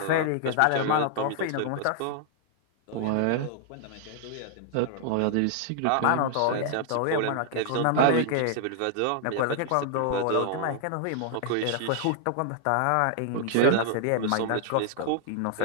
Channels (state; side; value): different; both; correlation -0.01